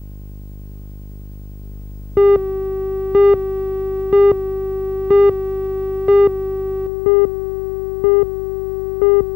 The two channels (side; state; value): right; drops out; at 6.9 s